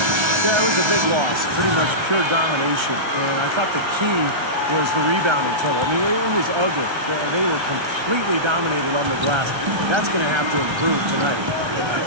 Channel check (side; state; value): left; late; 1.3 ms